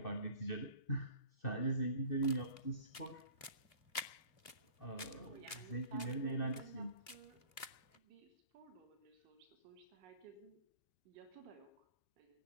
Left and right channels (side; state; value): right; late; 2.6 ms